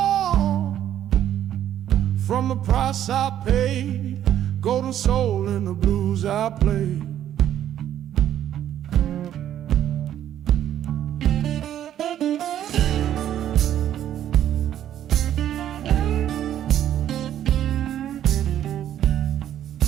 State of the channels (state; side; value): quieter; left; 11.1 dB